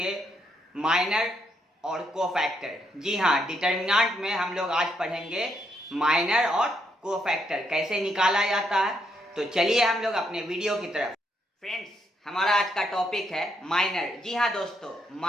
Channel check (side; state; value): both; normal; correlation 0.76